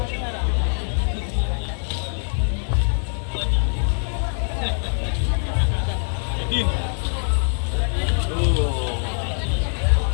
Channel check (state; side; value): silent; right; 63 dB below the other